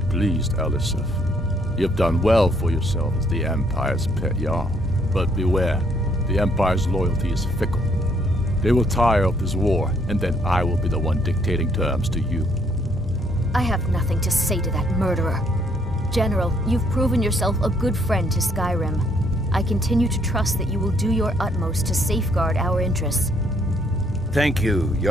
Elisif. You've done well for yourself as the Empire's pet Jarl. But beware, the Empire's loyalty is fickle. They will tire of this war, and then I will be the one dictating terms to you. I have nothing to say to that murderer. General, you've proven yourself a good friend to Skyrim. I continue to trust that you will do your utmost to safeguard our interests. Thank you,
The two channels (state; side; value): normal; both; correlation 0.68